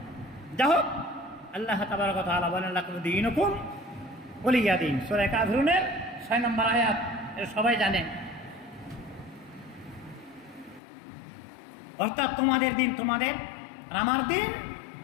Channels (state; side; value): drops out; right; at 10.8 s